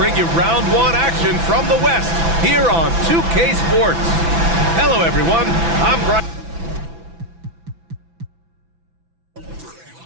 you round 1 action from the West here on 2K Sports. Hello, everyone. I'm Brian.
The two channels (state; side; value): late; left; 6.0 ms